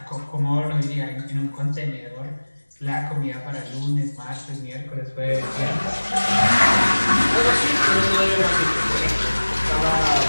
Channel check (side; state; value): both; inverted; correlation -1.00